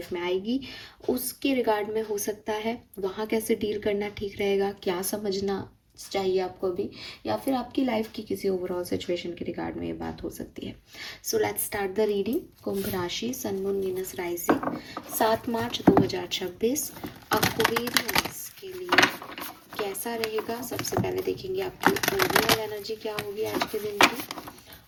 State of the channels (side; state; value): both; identical; correlation 1.00